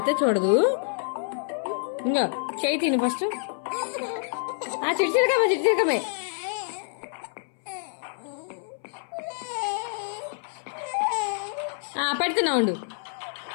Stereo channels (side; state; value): right; silent; 60 dB below the other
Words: చూడదు. ఇంకో చేయి తిను ఫస్ట్. చిట్చిరకమే చిట్చిరకమే. పెడుతున్నా ఉండు,